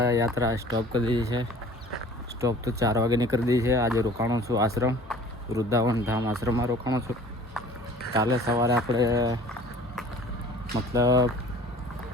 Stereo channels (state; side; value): normal; both; correlation 0.48